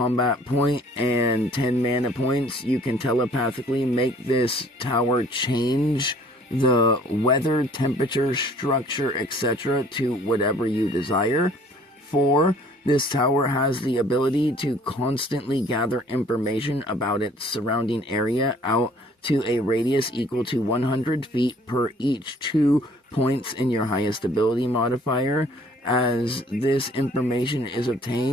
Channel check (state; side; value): normal; both; correlation 0.56